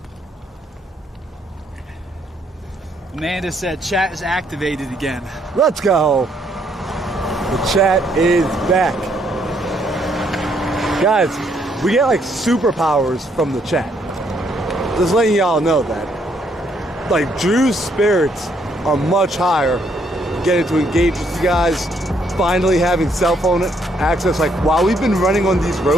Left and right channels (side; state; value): both; normal; correlation 0.70